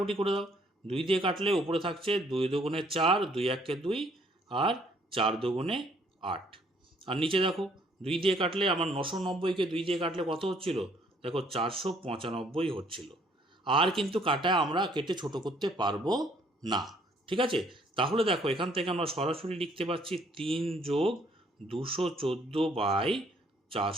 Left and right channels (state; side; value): normal; both; correlation 0.64